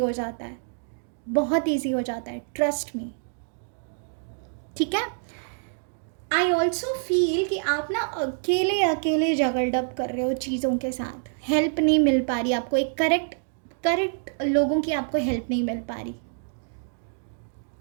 जाता है, बहुत ईजी हो जाता है, ट्रस्ट मी, ठीक है। आई ऑल्सो फील कि आप ना अकेले अकेले जगल्ड अप कर रहे हो चीज़ों के साथ, हेल्प नहीं मिल पा रही आपको, एक करेक्ट लोगों की आपको हेल्प नहीं मिल पा रही।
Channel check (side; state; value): left; silent; digital silence